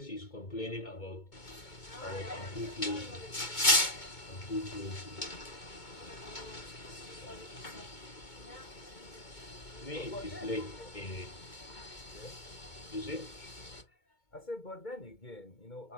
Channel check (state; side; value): late; right; 2.2 ms